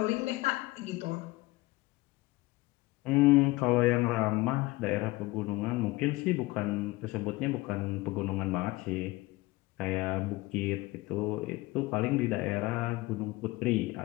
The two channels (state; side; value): quieter; right; 20.6 dB